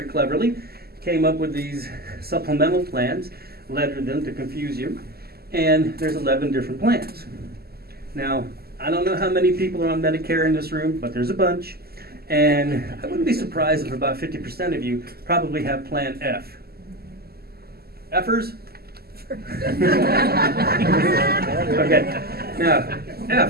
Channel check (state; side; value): late; left; 0.46 ms